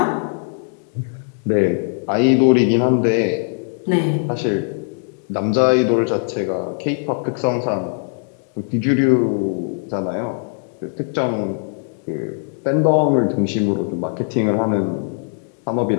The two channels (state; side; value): silent; right; digital silence